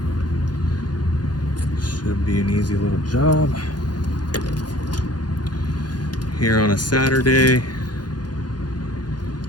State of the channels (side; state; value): right; late; 0.69 ms